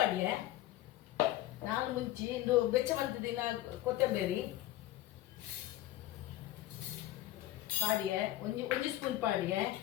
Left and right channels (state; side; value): quieter; right; 14.9 dB